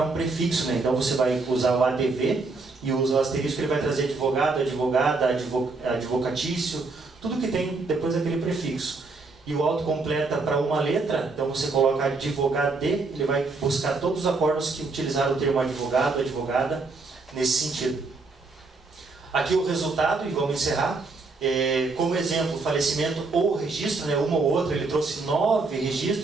um prefixo, né? Então você vai usar o ADV e usa o asterisco, ele vai trazer advogado, advogada, advocatício, tudo que tem depois daquele prefixo. E o autocompleta para uma letra, então você coloca advogado, ele vai buscar todos os acórdãos que utilizaram o termo advogado, advogada, nesse sentido. Aqui o resultado, e vamos encerrar. Como exemplo, falecimento ou registro, né, uma ou outra, ele trouxe 9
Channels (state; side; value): quieter; left; 3.8 dB